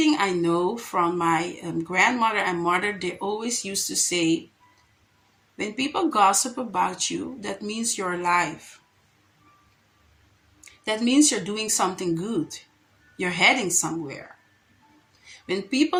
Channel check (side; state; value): both; identical; correlation 1.00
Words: I know from my grandmother and mother, they always used to say, when people gossip about you, that means you're alive. That means you're doing something good. You're heading somewhere. When people